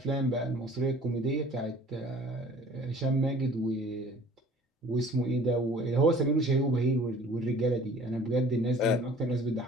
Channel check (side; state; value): both; normal; correlation 0.50